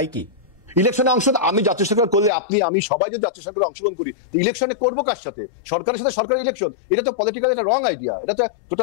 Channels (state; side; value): drops out; right; at 2.3 s